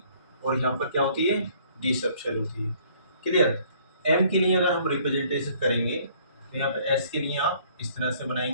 और यहाँ पर क्या होती है D सबशेल होती है। क्लियर, M के लिए अगर हम रिप्रेजेंटेशन करेंगे तो यहाँ पे S के लिए आप इस तरह से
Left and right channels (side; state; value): both; inverted; correlation -0.60